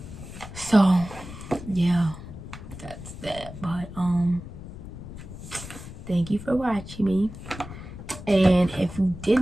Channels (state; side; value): noise; left; rumble, 12 dB below the sound